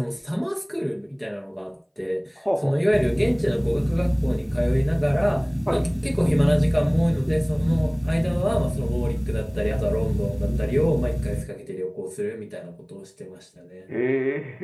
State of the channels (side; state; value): both; identical; correlation 1.00